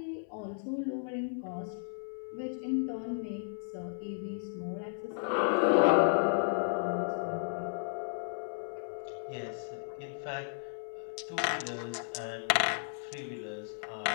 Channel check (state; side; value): silent; right; 55 dB below the other